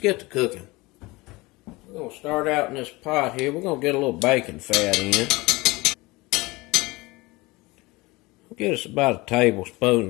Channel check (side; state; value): right; quieter; 22.5 dB